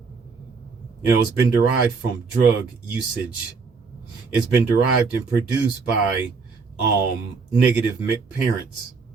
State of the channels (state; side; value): quieter; left; 4.8 dB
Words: You know, it's been derived from drug usage. It's been derived and produced by negative parents,